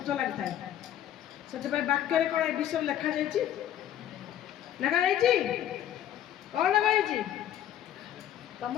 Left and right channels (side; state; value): right; quieter; 11.2 dB